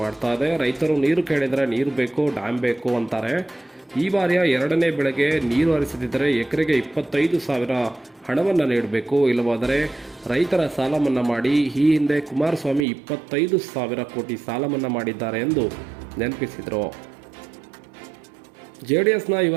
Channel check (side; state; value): left; drops out; at 12.9 s